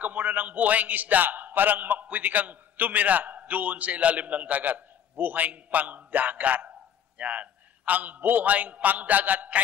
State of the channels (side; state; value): right; quieter; 8.9 dB